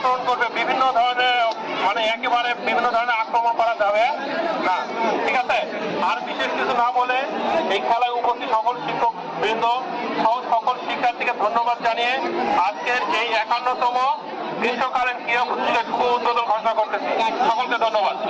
করবে, বিভিন্ন ধরনের মানে একেবারে বিভিন্ন ধরনের আক্রমণ করা যাবে না, ঠিক আছে? আর বিশেষ কিছু না বলে এই খেলায় উপস্থিত সকল শিক্ষক বৃন্দ সহ সকল শিক্ষার্থীকে ধন্যবাদ জানিয়ে আজকের এই 51তম গ্রীষ্মকালীন ক্রীড়া প্রতিযোগিতার শুভ উদ্বোধন ঘোষণা করতেছি। সকলকে ধন্যবাদ।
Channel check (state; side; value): identical; both; correlation 1.00